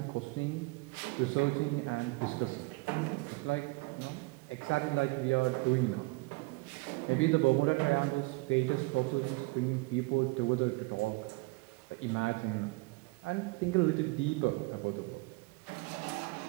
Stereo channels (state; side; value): quieter; left; 25.2 dB